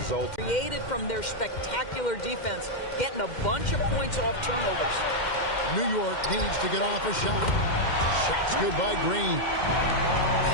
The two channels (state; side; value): late; right; 2.1 ms